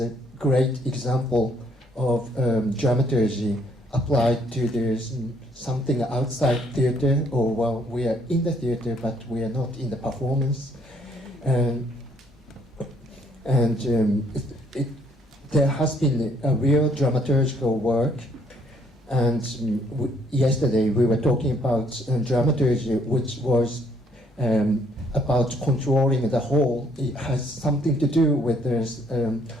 great example of dramaturgy applied to there's something outside theatre, or well, we are in the theatre, but we are not in the performance. There has been a real dramaturgical work. And yesterday we were talking about dramaturgy, which was about controlling the whole. It has something to do with this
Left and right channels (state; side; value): normal; both; correlation 0.66